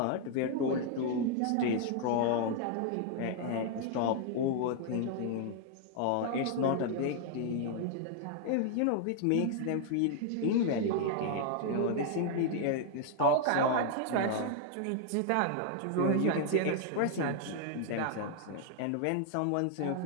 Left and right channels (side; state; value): both; different; correlation 0.00